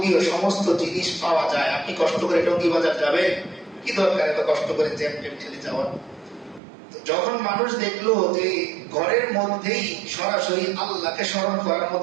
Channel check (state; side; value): drops out; left; at 6.6 s